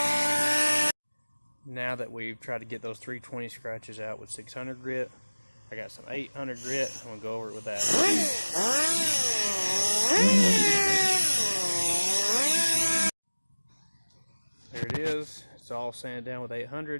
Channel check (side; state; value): both; inverted; correlation -1.00